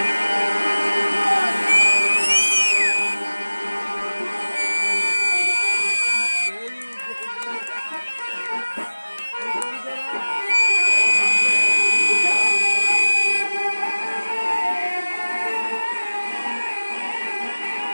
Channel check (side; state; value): both; inverted; correlation -1.00